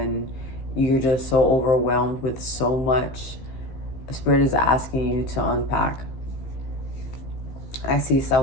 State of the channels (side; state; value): right; late; 15 ms